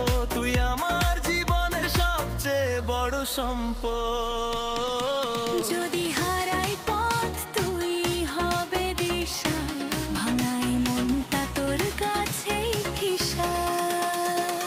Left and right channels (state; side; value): identical; both; correlation 1.00